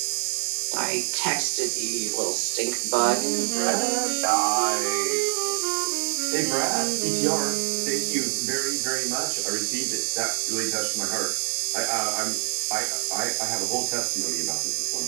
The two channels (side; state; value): left; silent; digital silence